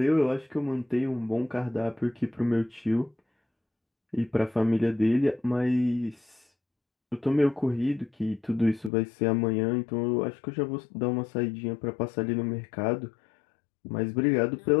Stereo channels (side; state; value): right; drops out; at 8.9 s